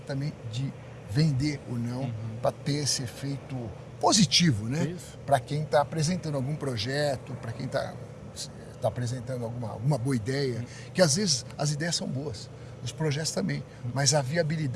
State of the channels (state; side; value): identical; both; correlation 1.00